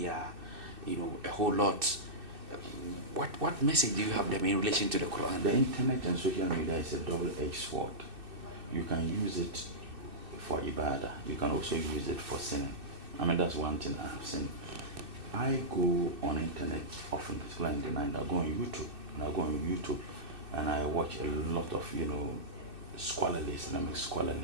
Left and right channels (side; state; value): left; late; 2.6 ms